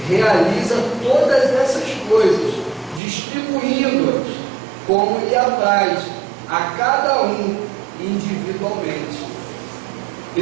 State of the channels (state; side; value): drops out; left; at 3.0 s